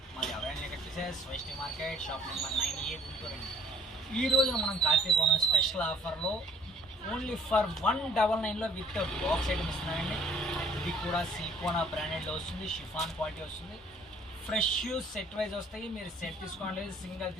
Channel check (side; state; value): both; normal; correlation 0.58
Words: మాది అవైలబుల్ వచ్చేసి Vaishnavi market shop number 9A Guntur అండి. ఈ రోజున మనం కార్తీక పౌర్ణమి స్పెషల్ ఆఫర్లో ఓన్లీ ఫర్ 199లో విత్ బాక్స్ ఐటమ్ ఇస్తున్నామండి. ఇది కూడా సిలికోనా బ్రాండెడ్లో వస్తుంది, షిఫాన్ క్వాలిటీ వస్తుంది, ఫ్రెష్ సెట్ వైజ్ వస్తాయి. మీరు సెట్ తీసుకోండి, సింగిల్